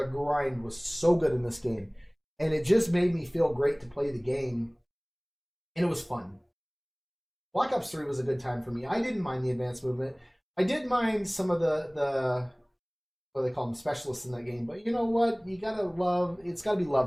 grind was so good in this game. And it just made me feel great to play the game. And it was fun. Black Ops 3 was a good time for me. I didn't mind the advanced movement. I did mind some of the what do they call them, specialists in that game. But you know what? It's gotta be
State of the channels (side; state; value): both; identical; correlation 1.00